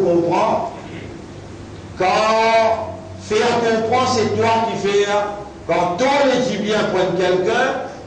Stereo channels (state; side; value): identical; both; correlation 1.00